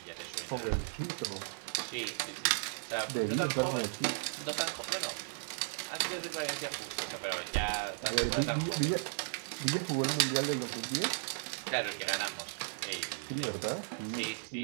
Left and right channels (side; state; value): left; silent; digital silence